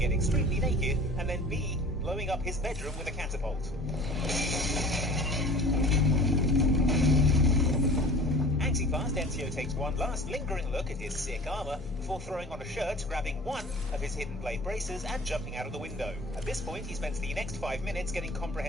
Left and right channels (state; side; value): normal; both; correlation 0.42